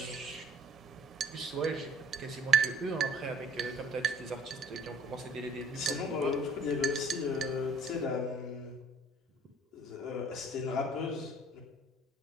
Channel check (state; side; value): normal; both; correlation 0.54